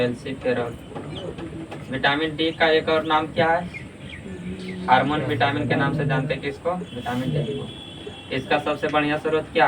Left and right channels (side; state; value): both; identical; correlation 1.00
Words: विटामिन डी का एक और नाम क्या है? हार्मोन विटामिन के नाम से जानते हैं किसको? विटामिन डी को। इसका सबसे बढ़िया स्रोत